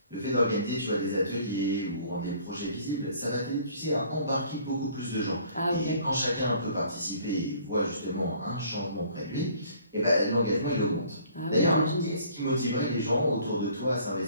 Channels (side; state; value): both; inverted; correlation -0.56